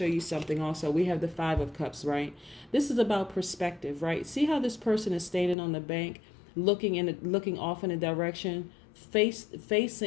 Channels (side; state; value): right; drops out; at 5.6 s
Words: you something also. We have the Five of Cups, right? This is about perspective, right? See how this person is standing on the bank, looking off in a direction,